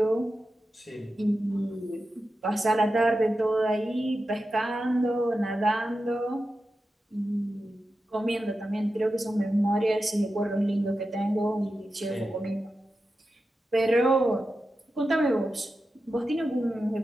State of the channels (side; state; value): both; normal; correlation 0.91